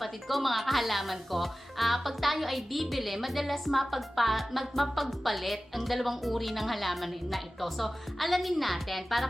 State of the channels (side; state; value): both; normal; correlation 0.96